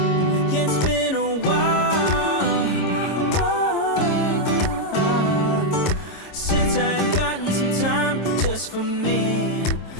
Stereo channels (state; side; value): late; right; 26 ms